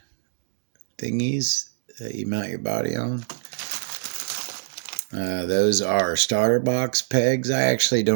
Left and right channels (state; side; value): silent; left; digital silence